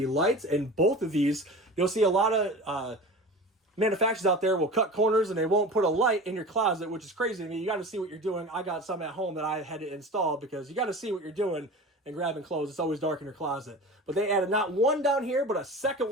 And both of these, you'll see a lot of manufacturers out there will cut corners and they won't put a light in your closet, which is crazy to me. You got to see what you're doing. I got some at home that I had to install because you got to see what you're doing and grabbing clothes. It's always dark in your closet. But they added not one down here, but a second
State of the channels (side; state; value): both; normal; correlation 0.34